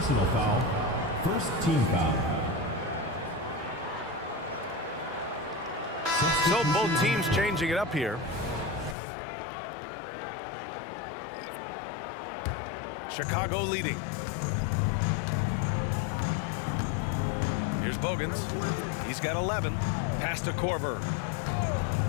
foul. First team foul. So both teams changing it up here. Chicago leading. Here's Bogans. He's got 11. Pass to Korver.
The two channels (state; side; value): drops out; right; at 9.0 s